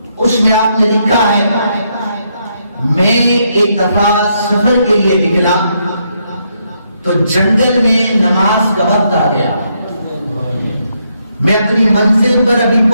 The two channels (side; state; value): both; inverted; correlation -0.77